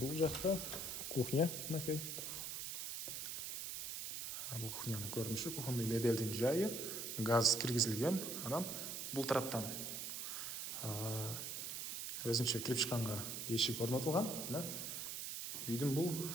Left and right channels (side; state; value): right; noise; hiss, 4 dB below the sound